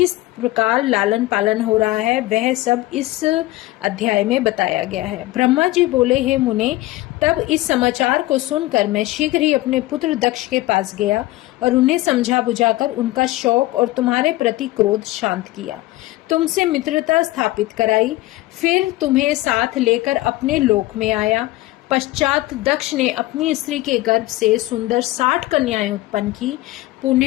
प्रकार लालन पालन हो रहा है वह सब इस अध्याय में बताया गया है। ब्रह्मा जी बोले, हे मुने, तब इस समाचार को सुनकर मैं शीघ्र ही अपने पुत्र दक्ष के पास गया और उन्हें समझा बुझाकर उनका शौक और तुम्हारे प्रति क्रोध शांत किया, तुमसे मित्रता स्थापित कराई, फिर तुम्हें साथ लेकर अपने लोक में आया। पश्चात दक्ष ने अपनी स्त्री के गर्भ से सुंदर 60 कन्याएं उत्पन्न की।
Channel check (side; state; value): right; quieter; 18.0 dB